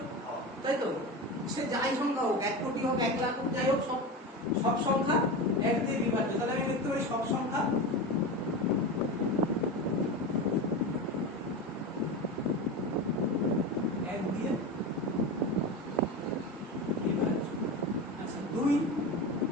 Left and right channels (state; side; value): normal; both; correlation 0.23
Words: তাই তো? সে যাই সংখ্যা হোক, 1 কোটি হোক, 1 লাখ হোক, যাই হোক, সব সংখ্যা 1 দিয়ে বিভাজ্য। তাহলে আমি লিখতে পারি সব সংখ্যা 1 দিয়ে বিভাজ্য। আচ্ছা 2